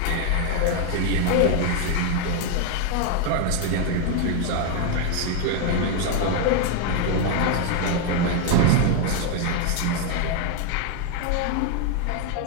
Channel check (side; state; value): both; different; correlation 0.01